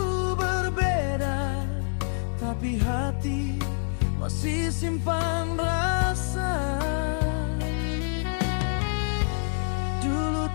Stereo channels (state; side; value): silent; right; digital silence